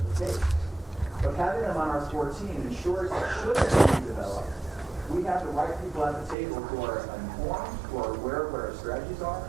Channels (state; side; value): drops out; left; at 6.4 s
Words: the case. But having them on our core team ensures that should this be developed, we have the right people at the table who are informed, who are aware of what our strategies are,